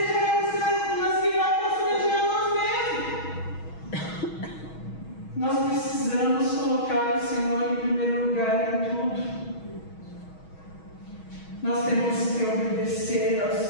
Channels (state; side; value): late; right; 6.3 ms